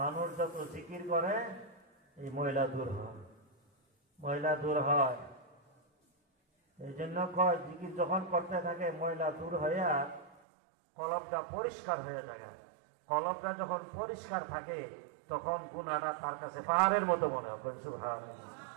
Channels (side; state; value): left; drops out; at 10.4 s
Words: যত জিকির করে এই ময়লা দূর হয়, ময়লা দূর হয়। এই জন্য কয় জিকির যখন করতে থাকে ময়লা দূর হইয়া কলবটা পরিষ্কার হয়ে যায়। কলবটা যখন পরিষ্কার থাকে তখন গুনাহটা তার কাছে পাহাড়ের মতো মনে হয়।